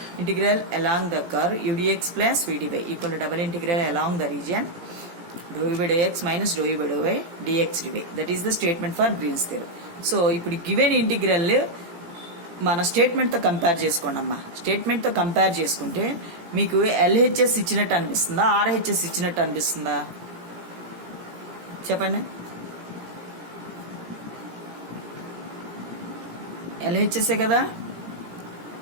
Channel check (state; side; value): late; left; 17 ms